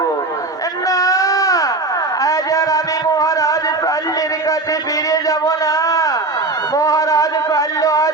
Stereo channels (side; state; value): left; quieter; 3.2 dB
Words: না, আজ আর আমি মহারাজ শাল্যের কাছে ফিরে যাব না। মহারাজ শাল্য